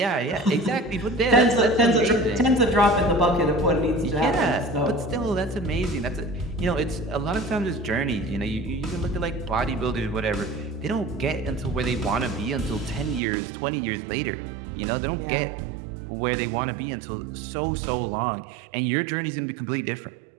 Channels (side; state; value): left; drops out; at 13.2 s